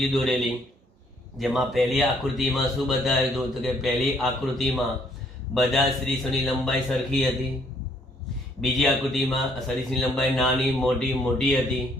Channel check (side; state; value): both; normal; correlation 0.66